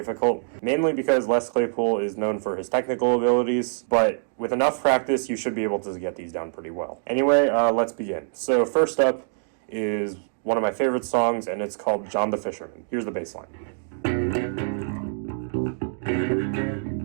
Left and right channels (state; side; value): silent; left; digital silence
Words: mainly because Les Claypool is known for his technical abilities, but with enough practice you should be able to get these down pretty well. Anyway, let's begin. So first up is one of my favorite songs, and it's called John the Fisherman. Here's the bassline.